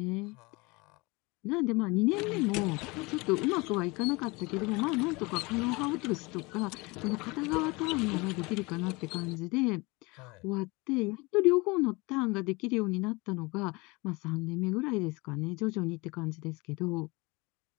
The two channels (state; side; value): quieter; right; 25.3 dB